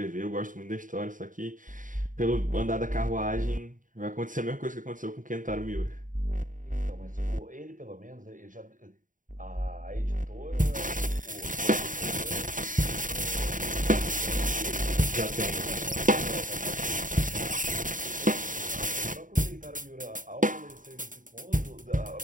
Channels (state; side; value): late; left; 0.38 ms